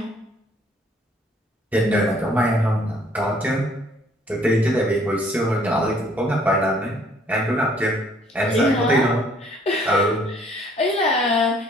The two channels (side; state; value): both; normal; correlation 0.61